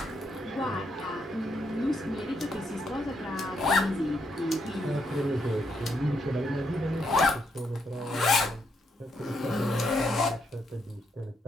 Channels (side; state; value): both; normal; correlation 0.78